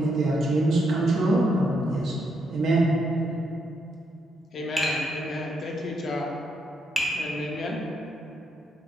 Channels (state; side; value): normal; both; correlation 0.78